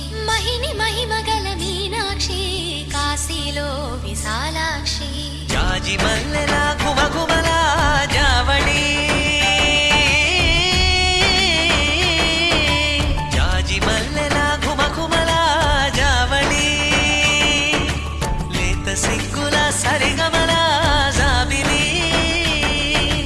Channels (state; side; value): identical; both; correlation 1.00